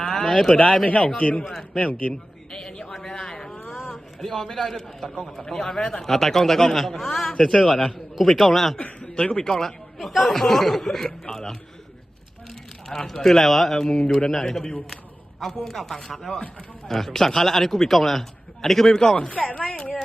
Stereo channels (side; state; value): both; normal; correlation 0.95